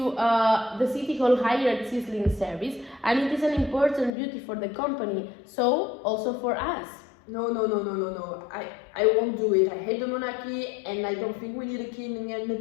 city hall hired Sizzling service, and it is an important duty for the company, so also for us. No. I won't do it. I hate the monarchy and I don't think we need a king and a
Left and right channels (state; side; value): drops out; right; at 4.1 s